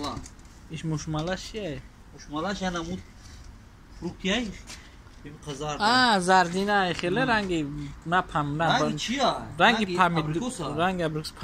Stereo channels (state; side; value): identical; both; correlation 1.00